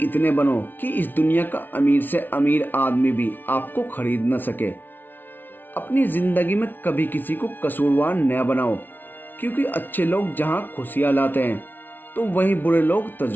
इतने बनो कि इस दुनिया का अमीर से अमीर आदमी भी आपको खरीद न सके। अपनी जिंदगी में कभी किसी को कसूरवार न बनाओ, क्योंकि अच्छे लोग जहां खुशियां लाते हैं तो वहीं बुरे लोग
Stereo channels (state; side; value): late; right; 0.091 ms